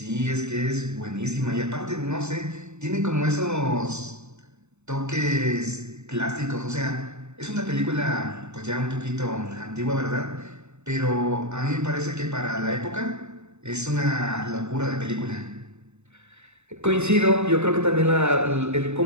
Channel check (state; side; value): late; left; 0.82 ms